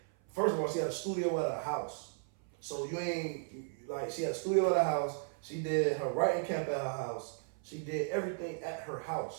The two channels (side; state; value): left; silent; 54 dB below the other